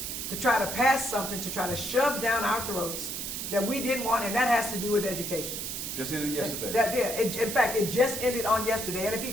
to try to pass something, to try to shove down our throats that we didn't want, and that has to do with education. Just ended yesterday. In fact, it just ended on yesterday, and if he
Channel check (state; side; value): noise; right; hiss, 5 dB below the sound